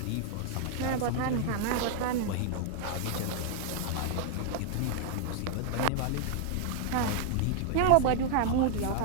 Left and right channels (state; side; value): different; both; correlation 0.00